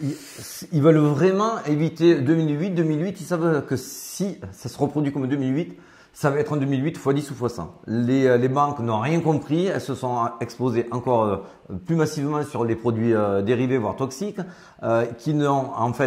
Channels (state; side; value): identical; both; correlation 1.00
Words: Ils veulent vraiment éviter 2008. 2008, ils savent que si ça se reproduit comme 2008, ça va être en 2008 x 10 ou x 100. Les banques n'ont rien compris, elles se sont exposées encore plus massivement sur les produits dérivés, voire toxiques, qui n'ont en